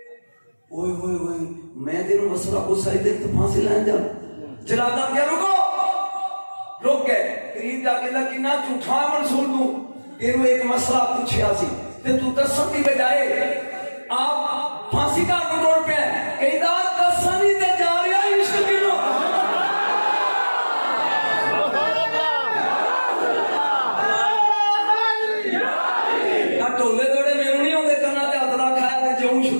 اوئے ہوئے ہوئے میں تینوں مسئلہ کو صحیح دے تو پھانسی لائن جا جلال کیا رکو رک گئے قریب جا کے لگی نہ جھوٹا منصور تو تینوں ایک مسئلہ پوچھیا سی تے تو دسن دی بجائے آپ پھانسی کا کنٹرول پہ ہے کہیں دا دسنی تے جا رہا عشق کنوں ٹولے دوڑے میرے نہیں ہوندے کرنا تے ہاتھ رکھ آیا تے جو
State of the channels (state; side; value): inverted; both; correlation -1.00